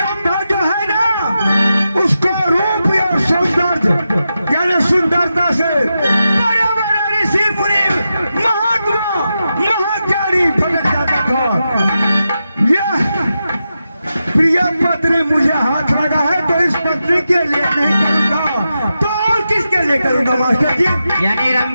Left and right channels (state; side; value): inverted; both; correlation -0.89